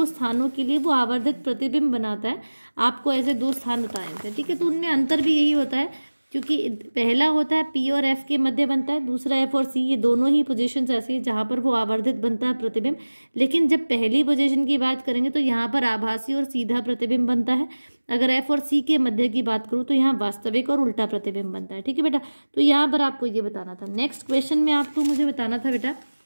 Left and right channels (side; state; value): both; inverted; correlation -1.00